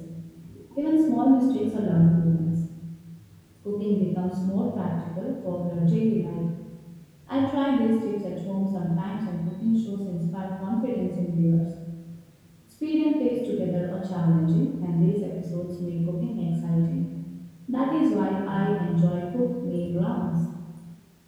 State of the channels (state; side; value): identical; both; correlation 1.00